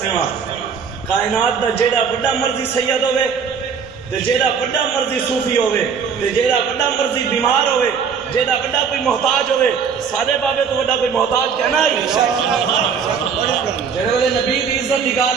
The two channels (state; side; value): quieter; left; 6.4 dB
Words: رہا کائنات دا جیڑا بڑا مرضی سید ہوئے تے جیڑا بڑا مرضی صوفی ہوئے تے جیڑا بڑا مرضی بیمار ہوئے، جیڑا بڑا کوئی محتاج ہوئے، سارے بابے تو بڑا کوئی محتاج کہنا ہے؟ جیڑے والے نبی کی عزت